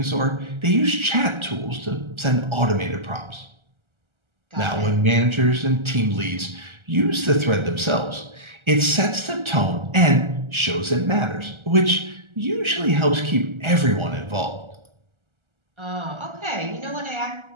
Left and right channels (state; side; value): late; left; 1.3 ms